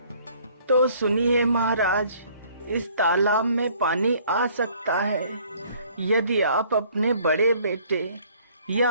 तो सुनिए महाराज, इस तालाब में पानी आ सकता है यदि आप अपने बड़े बेटे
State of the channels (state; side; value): inverted; both; correlation -0.58